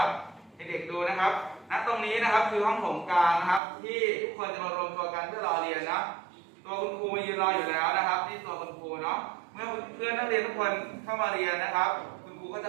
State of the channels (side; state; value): left; drops out; at 3.6 s